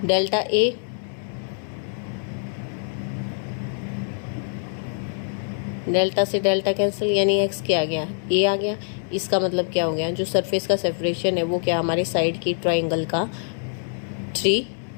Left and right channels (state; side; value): silent; right; 62 dB below the other